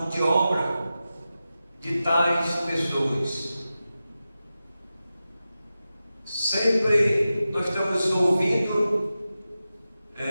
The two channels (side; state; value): both; inverted; correlation -0.93